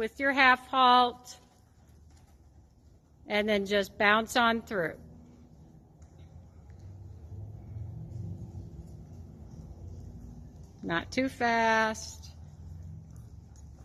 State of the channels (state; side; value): identical; both; correlation 1.00